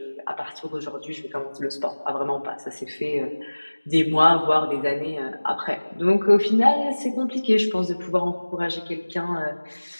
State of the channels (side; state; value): both; inverted; correlation -1.00